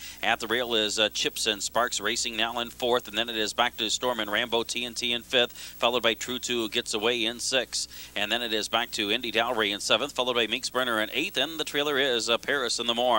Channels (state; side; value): identical; both; correlation 1.00